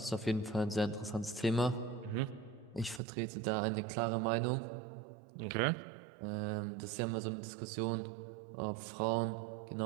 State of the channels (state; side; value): drops out; left; at 3.0 s